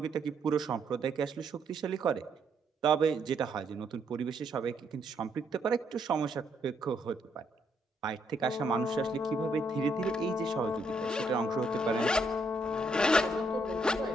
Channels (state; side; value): normal; both; correlation 0.74